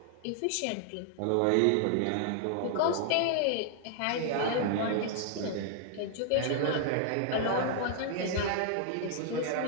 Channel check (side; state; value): both; different; correlation 0.00